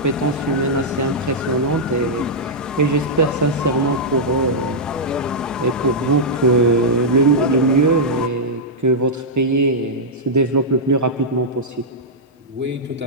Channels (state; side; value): normal; both; correlation -0.08